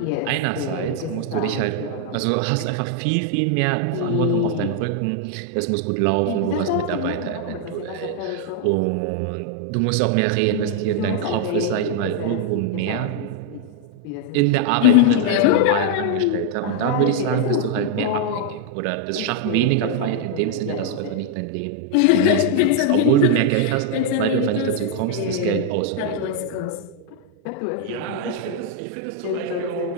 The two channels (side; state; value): both; different; correlation 0.00